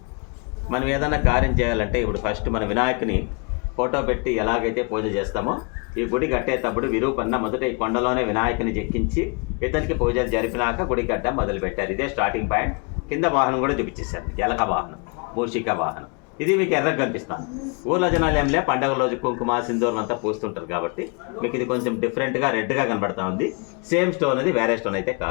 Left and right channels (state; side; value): quieter; right; 34.1 dB